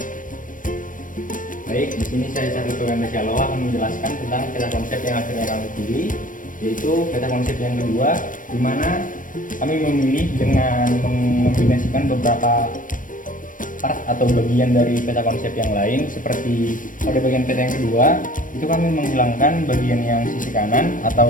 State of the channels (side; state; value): right; late; 0.38 ms